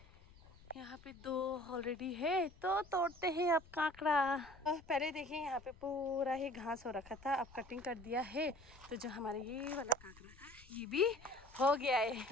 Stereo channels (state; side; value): noise; left; rumble, 22 dB below the sound